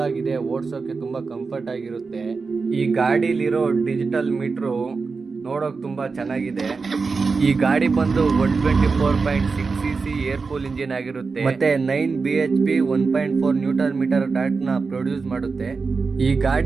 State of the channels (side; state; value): left; quieter; 4.5 dB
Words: ಓಡಿಸೋಕ್ಕೆ ತುಂಬ ಕಂಫರ್ಟ್ ಆಗಿರುತ್ತೆ. ಈ ಗಾಡೀಲಿರೋ ಡಿಜಿಟಲ್ ಮೀಟ್ರು ನೋಡೋಕೆ ತುಂಬ ಚೆನ್ನಾಗಿದೆ. ಈ ಗಾಡಿ ಬಂದು 124.6 cc ಏರ್ ಕೂಲ್ ಇಂಜಿನ್ ಆಗಿರುತ್ತೆ ಮತ್ತೆ 9 bhp 1.4 ನ್ಯೂಟನ್ ಮೀಟರ್ ಟಾರ್ಕ್ನ ಪ್ರೊಡ್ಯೂಸ್ ಮಾಡುತ್ತೆ. ಈ